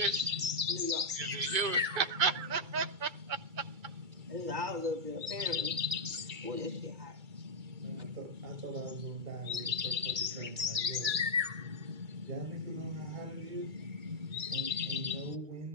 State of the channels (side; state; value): left; late; 2.3 ms